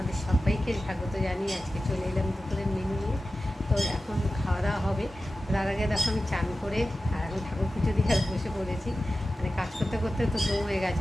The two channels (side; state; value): both; normal; correlation 0.94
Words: সবাইকে স্বাগত জানিয়ে আজকে চলে এলাম দুপুরের মেনু নিয়ে। তো এখন খাওয়া দাওয়া হবে। তার আগে দেখো আমি চান করে আর এখন ঠাকুর পুজো দিয়ে আর বসে পড়েছি। মানে কাজ করতে করতে তো দম হয়ে